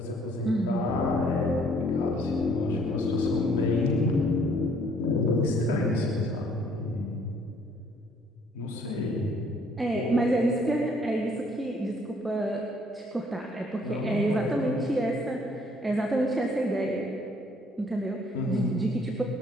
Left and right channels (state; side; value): normal; both; correlation 0.62